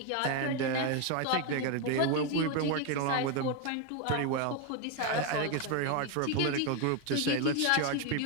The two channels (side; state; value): both; different; correlation 0.02